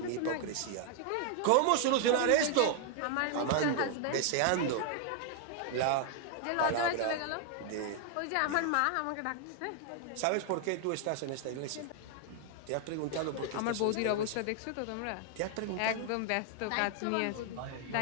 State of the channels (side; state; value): both; different; correlation 0.00